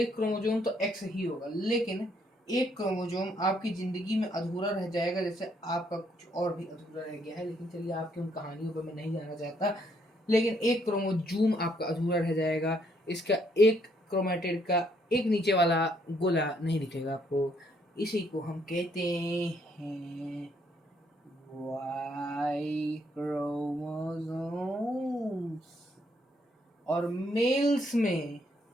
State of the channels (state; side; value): normal; both; correlation 0.70